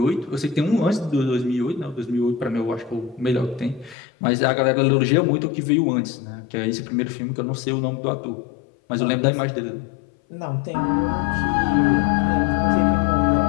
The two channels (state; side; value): drops out; right; at 4.0 s